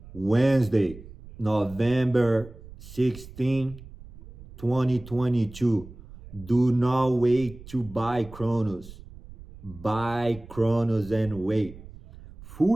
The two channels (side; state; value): right; noise; rumble, 18 dB below the sound